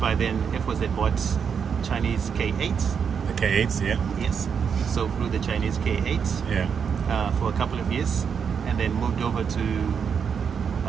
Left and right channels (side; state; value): left; quieter; 6.8 dB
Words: then, Air Force had bought Chinese K-8s. The K-8s, yeah. Yes. So flew the Chinese K-8s. Yeah. For a couple of years, and then moved over to